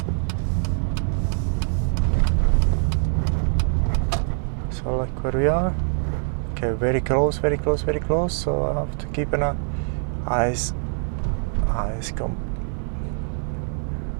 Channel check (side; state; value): left; silent; 63 dB below the other